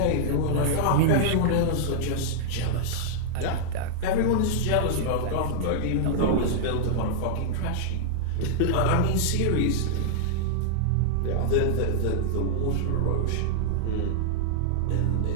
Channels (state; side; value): different; both; correlation -0.01